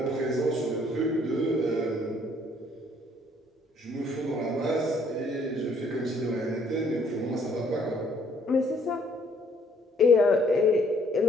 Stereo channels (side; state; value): both; normal; correlation 0.63